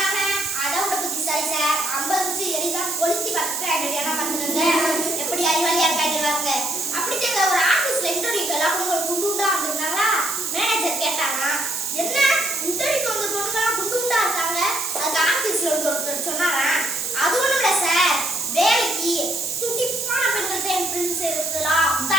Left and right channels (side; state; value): right; noise; hiss, 3 dB below the sound